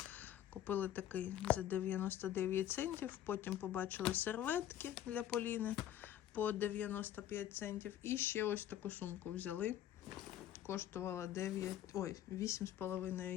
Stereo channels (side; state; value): right; quieter; 11.5 dB